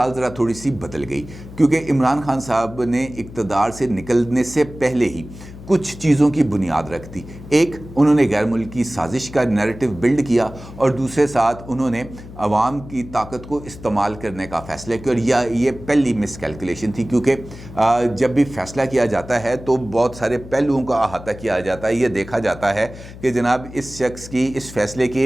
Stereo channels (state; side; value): noise; left; hum, 15 dB below the sound